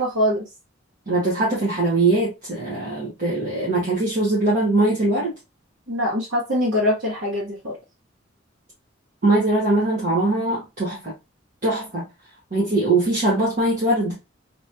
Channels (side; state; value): both; normal; correlation 0.29